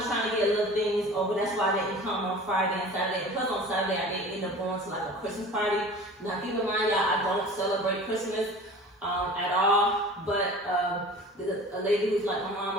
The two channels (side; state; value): both; normal; correlation 0.40